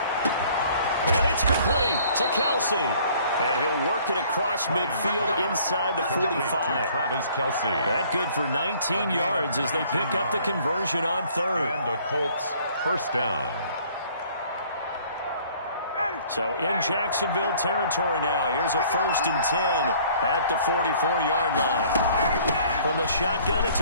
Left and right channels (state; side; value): inverted; both; correlation -0.56